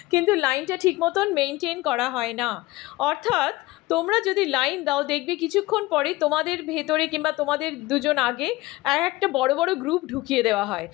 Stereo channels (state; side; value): quieter; right; 19.6 dB